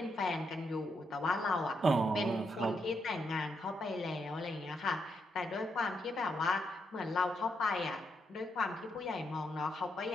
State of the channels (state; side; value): normal; both; correlation 0.80